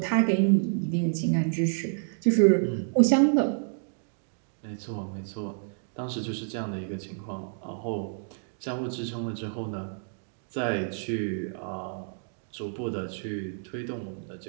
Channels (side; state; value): left; silent; digital silence